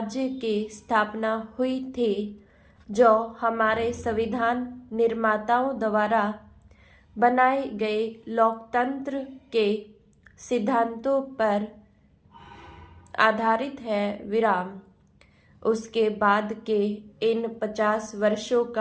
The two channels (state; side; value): identical; both; correlation 1.00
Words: की स्थापना हुई थी, जो हमारे संविधान निर्माताओं द्वारा बनाए गए लोकतंत्र के सिद्धांतों पर आधारित है। विराम। उसके बाद के इन 50 वर्षों